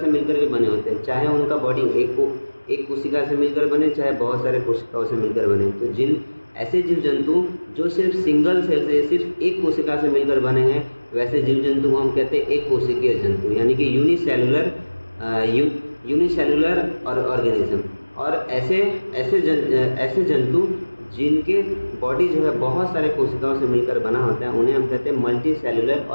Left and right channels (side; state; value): both; inverted; correlation -1.00